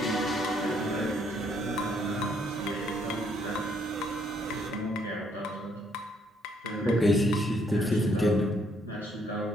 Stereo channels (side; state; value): both; normal; correlation 0.69